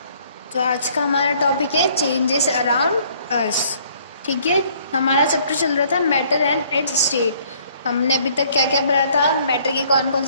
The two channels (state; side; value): inverted; both; correlation -0.61